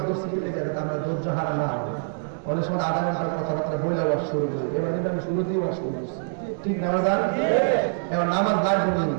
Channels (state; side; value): silent; left; digital silence